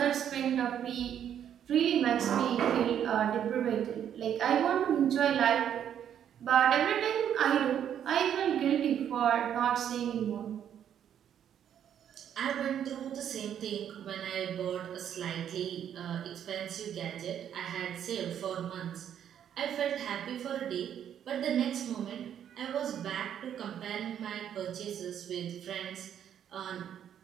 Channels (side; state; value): left; quieter; 9.5 dB